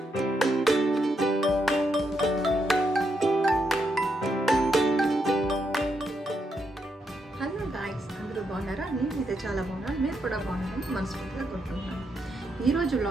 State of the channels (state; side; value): normal; both; correlation 0.80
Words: హలో గాయ్స్, అందరూ బాగున్నారా? నేనైతే చాలా బాగున్నాను. మీరు కూడా బాగున్నారని మనస్ఫూర్తిగా కోరుకుంటున్నాను. ఈరోజు